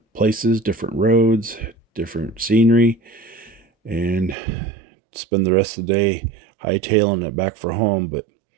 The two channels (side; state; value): left; drops out; at 4.4 s